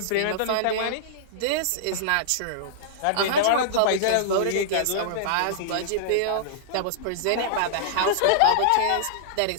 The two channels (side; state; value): both; different; correlation -0.02